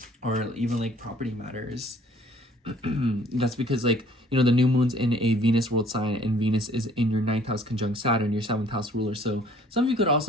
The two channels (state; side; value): normal; both; correlation 0.57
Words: or even like property matters. That's because like, you know, the new moon's in a Venus world sign, and Venus is in your 9th house conjunct Saturn, your 7th house ruler. So some of you could